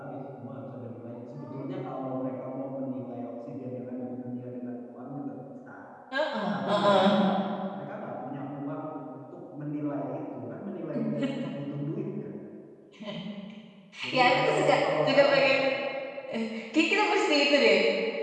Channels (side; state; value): both; identical; correlation 1.00